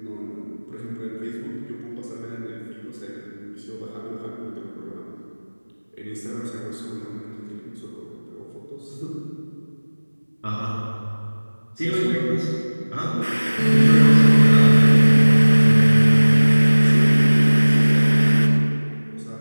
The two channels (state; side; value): inverted; both; correlation -1.00